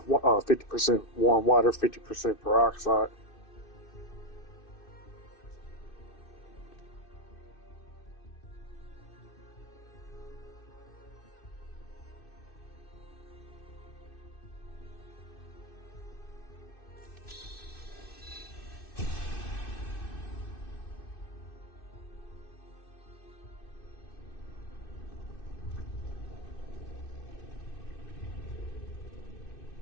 50% warm water, 50% peroxide.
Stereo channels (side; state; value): right; late; 2.6 ms